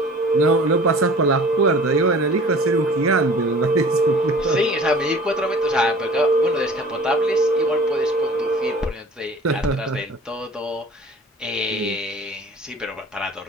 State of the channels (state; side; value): normal; both; correlation 0.46